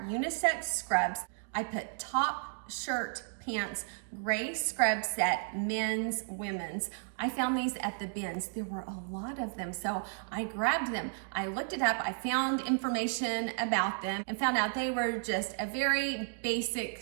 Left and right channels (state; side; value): silent; left; digital silence